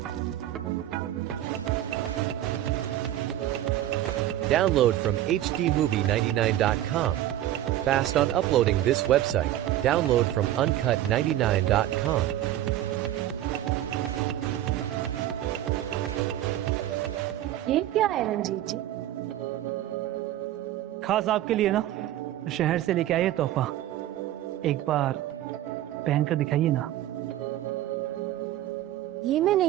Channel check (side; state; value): left; quieter; 13.2 dB